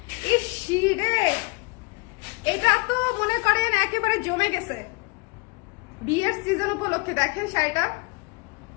ইসিরে, এটা তো মনে করেন একেবারে জমে গেছে বিয়ের সিজন উপলক্ষে। দেখেন শাড়িটা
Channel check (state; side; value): quieter; right; 28.3 dB